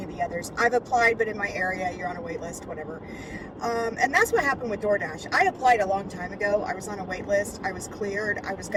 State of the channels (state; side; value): identical; both; correlation 1.00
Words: of the others. I've applied, but in my area, you're on a wait list, whatever. And that's what happened with DoorDash. I applied a long time ago. I was on a wait list. I was cleared. I was